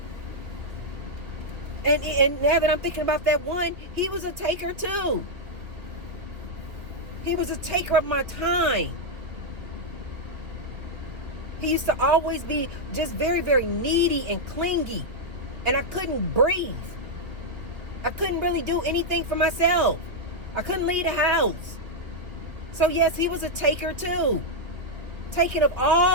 And now that I'm thinking about that one, he was a taker too. He was a taker of my time. He used to always be just very, very needy and clingy. And I couldn't breathe. I couldn't really do anything for myself. I couldn't leave the house. So yes, he was a taker too. Taking of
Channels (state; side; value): late; left; 2.5 ms